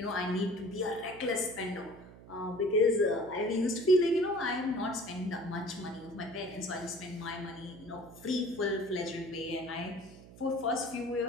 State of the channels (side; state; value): right; noise; hum, 18 dB below the sound